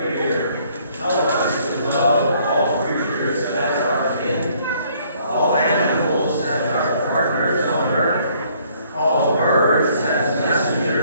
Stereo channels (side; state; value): both; inverted; correlation -0.63